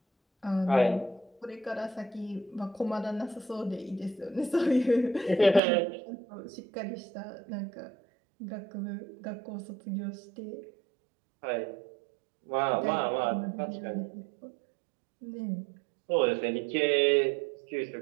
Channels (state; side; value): drops out; left; at 5.6 s